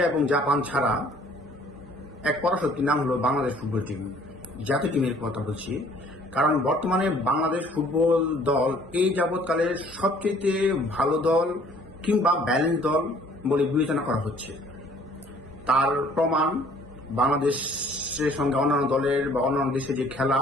এবং জাপান ছাড়া এক পরাশক্তির নাম হলো বাংলাদেশ ফুটবল টিম। জাতীয় টিমের কথা বলছি, কারণ বর্তমানে বাংলাদেশ ফুটবল দল এই যাবৎকালের সবচেয়ে ভালো দল কিংবা ব্যালেন্স দল বলে বিবেচনা করা হচ্ছে। তার প্রমাণ বাংলাদেশের সঙ্গে অন্যান্য দলের বা অন্যান্য দেশে যে খেলা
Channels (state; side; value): normal; both; correlation 0.57